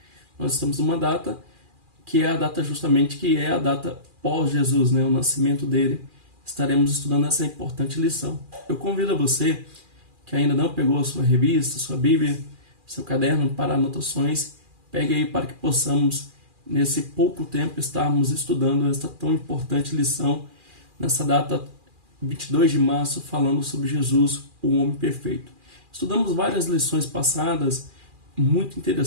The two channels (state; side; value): late; left; 2.4 ms